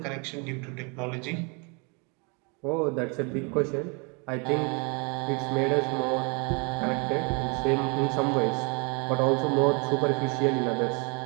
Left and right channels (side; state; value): left; quieter; 32.7 dB